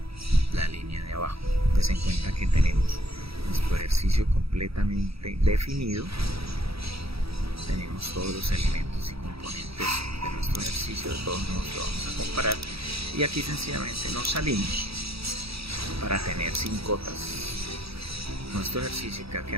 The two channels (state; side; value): late; left; 0.77 ms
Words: la línea de abajo. Ten en cuenta que tenemos nuestro ejercicio completamente definido, tenemos todos los elementos y componentes de nuestro ejercicio, de todos modos lo vamos a comparar y aquí sencillamente nos salimos para tener sin cotas nuestro ejercicio, que va a